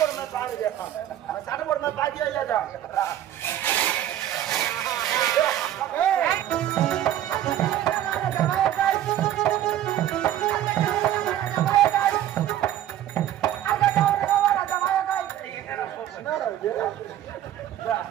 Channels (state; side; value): quieter; left; 11.9 dB